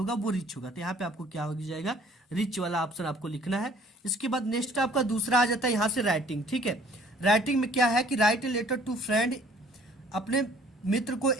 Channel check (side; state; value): both; normal; correlation 0.56